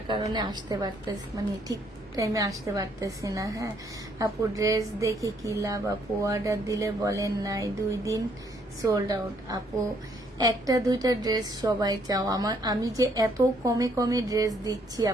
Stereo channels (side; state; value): both; normal; correlation 0.68